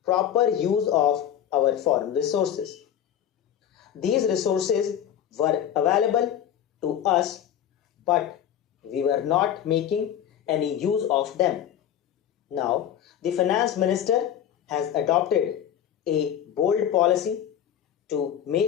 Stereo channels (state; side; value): quieter; right; 10.1 dB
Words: proper use of our foreign resources. These resources were available to us, but we were not making any use of them. Now, the finance minister has adopted a bold policy to